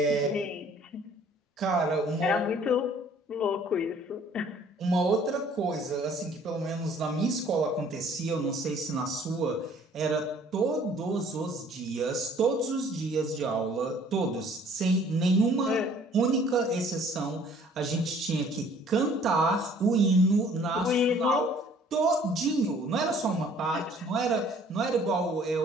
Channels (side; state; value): both; normal; correlation 0.56